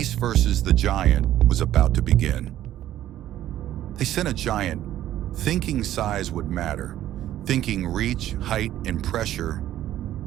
versus the giant was about to begin. They sent a giant, thinking size would matter, thinking reach, height, and pressure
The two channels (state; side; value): quieter; left; 12.7 dB